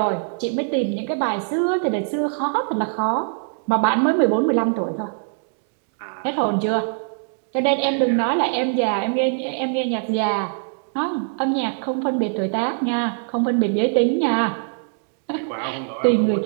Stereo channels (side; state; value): left; silent; digital silence